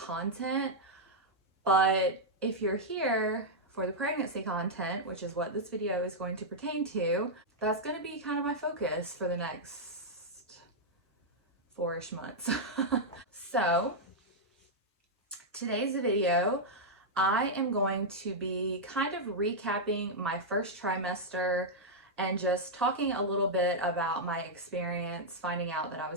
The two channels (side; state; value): both; normal; correlation -0.05